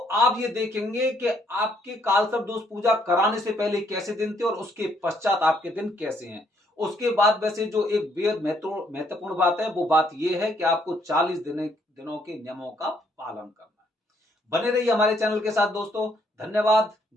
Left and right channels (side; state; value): both; normal; correlation 0.70